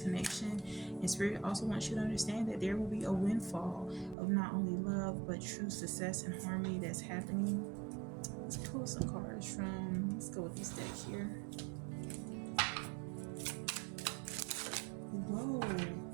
And Spirit also wants you to understand that there will be a windfall of not only love but true success and harmony that's happening. Let's pull some cards from, let's go with this deck here. Whoa,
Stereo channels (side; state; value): left; drops out; at 4.2 s